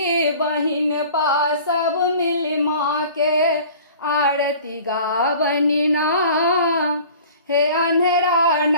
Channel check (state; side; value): inverted; both; correlation -0.45